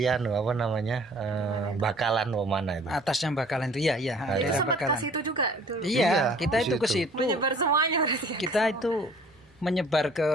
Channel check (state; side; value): normal; both; correlation 0.52